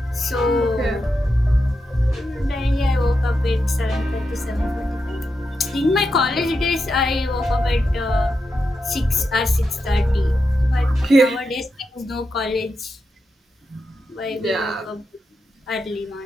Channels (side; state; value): both; normal; correlation 0.87